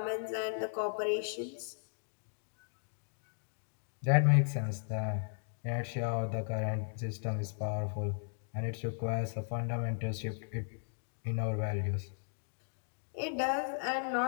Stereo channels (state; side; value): silent; right; digital silence